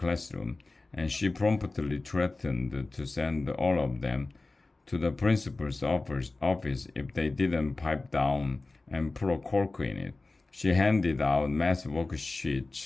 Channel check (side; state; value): right; quieter; 3.3 dB